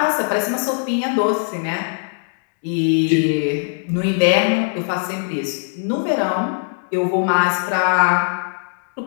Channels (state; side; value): silent; right; 66 dB below the other